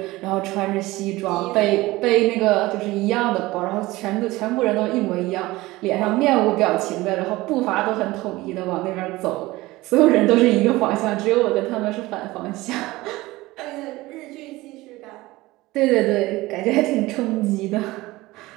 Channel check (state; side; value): quieter; left; 19.5 dB